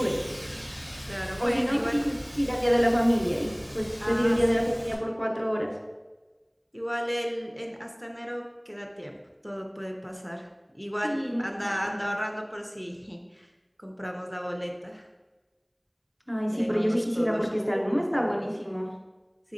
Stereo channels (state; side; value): identical; both; correlation 1.00